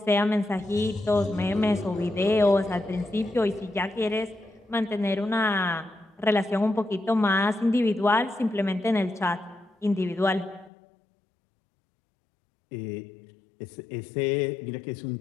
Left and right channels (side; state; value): right; drops out; at 10.7 s